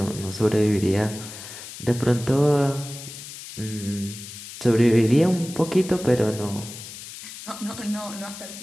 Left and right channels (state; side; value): noise; left; hiss, 13 dB below the sound